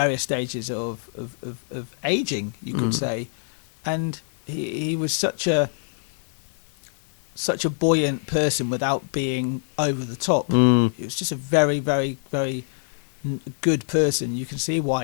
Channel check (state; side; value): silent; right; 62 dB below the other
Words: stages of aging, you could say, and he was such a buoyant person without being over the top. He was just a very, very, very good person. You can see